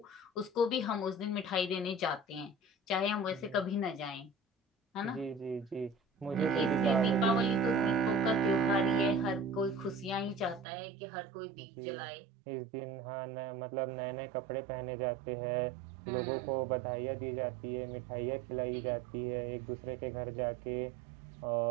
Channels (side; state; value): left; drops out; at 10.7 s